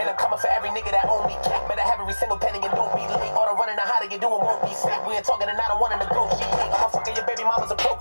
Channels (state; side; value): inverted; both; correlation -1.00